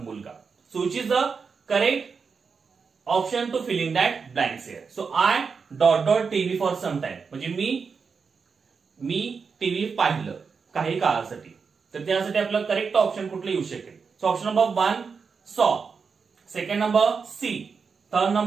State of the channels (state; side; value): quieter; left; 5.4 dB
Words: So which is the correct option to fill in that blanks here. So I dot dot TV for some time म्हणजे मी टीव्ही पाहिलं काही काळासाठी. तर त्यासाठी आपलं करेक्ट ऑप्शन कुठलं येऊ शकेल. So option number 1 saw, second number see, third